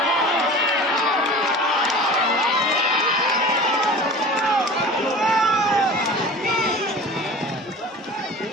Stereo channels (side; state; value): both; normal; correlation 0.38